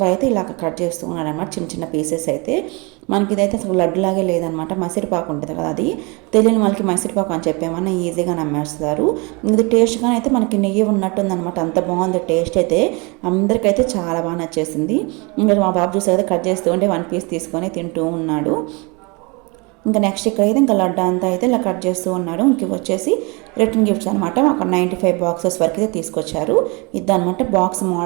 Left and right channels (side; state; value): left; quieter; 28.8 dB